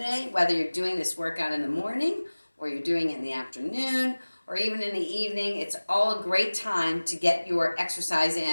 whether you're doing this workout in the morning or you're doing it in the afternoon or even in the evening. It's all a great time to get your exercise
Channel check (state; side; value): inverted; both; correlation -1.00